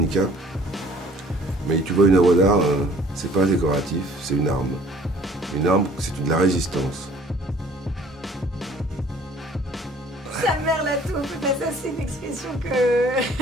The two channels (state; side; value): normal; both; correlation 0.54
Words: mais tu vois une œuvre d'art, c'est pas décoratif, c'est une arme. Une arme, c'est de la résistance. Sa mère la tour. ça c'est une expression que